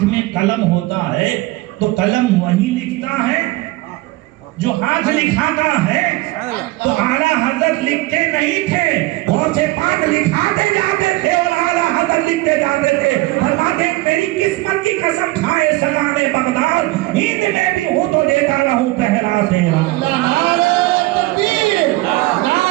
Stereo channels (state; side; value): quieter; left; 19.9 dB